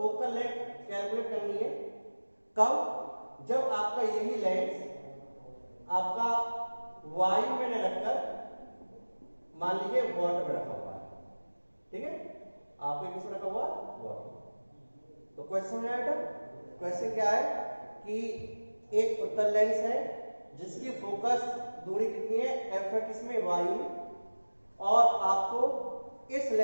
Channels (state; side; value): inverted; both; correlation -1.00